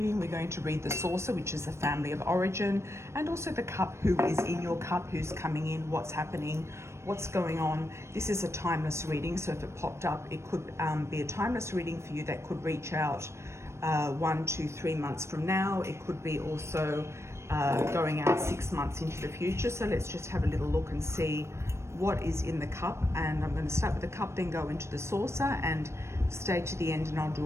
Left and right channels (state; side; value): late; left; 0.13 ms